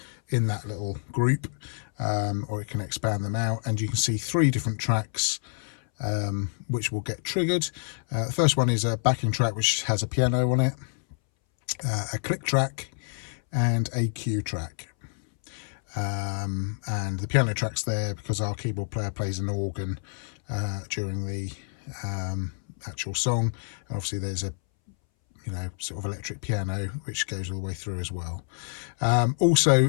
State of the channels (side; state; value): right; silent; 60 dB below the other